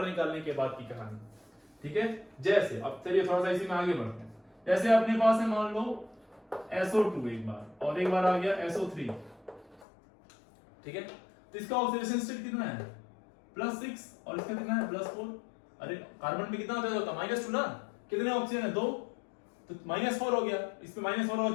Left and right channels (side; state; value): right; drops out; at 9.9 s